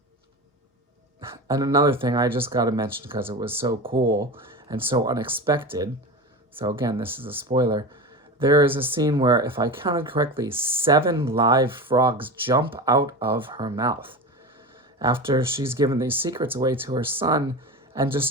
another thing I just got to mention because it was so cool and so unexpected. So again, this is a spoiler. There is a scene where, if I counted correctly, 7 live frogs jump out of her mouth after she's given these secrets away to her son. And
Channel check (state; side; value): normal; both; correlation 0.26